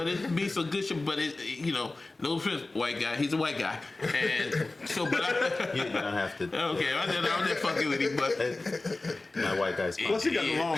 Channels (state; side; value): quieter; right; 3.1 dB